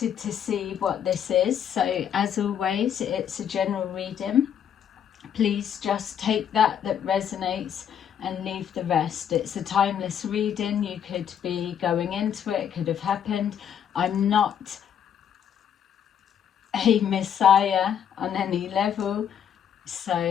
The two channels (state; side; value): quieter; right; 8.9 dB